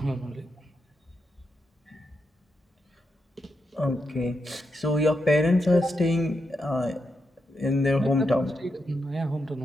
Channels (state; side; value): normal; both; correlation 0.85